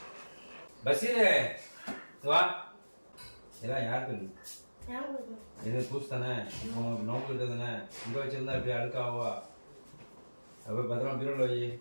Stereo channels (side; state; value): both; inverted; correlation -1.00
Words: பசீரே வா. இதெல்லாம் யாருக்கு இது? பூசு தானே, நோக்கிட்டு தானே. இங்கே வச்சிருந்தா இப்படி அழுக்காவா? அப்போ பத்திரமா பீரோல வை.